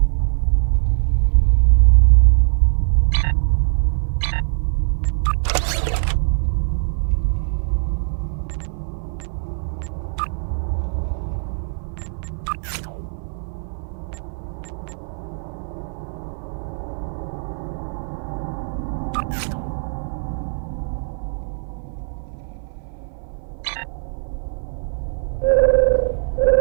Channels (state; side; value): silent; left; 63 dB below the other